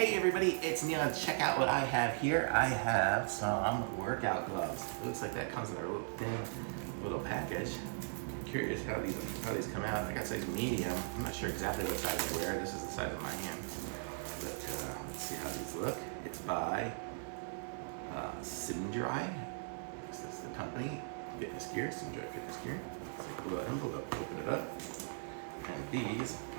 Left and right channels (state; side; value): silent; left; 52 dB below the other